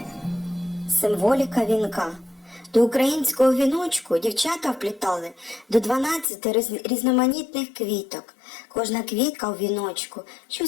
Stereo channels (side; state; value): right; drops out; at 6.2 s